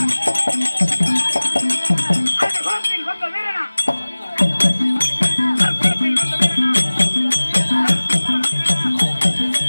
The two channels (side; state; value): both; inverted; correlation -1.00